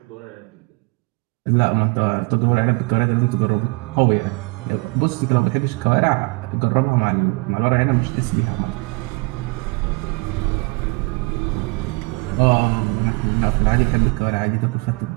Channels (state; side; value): quieter; left; 29.1 dB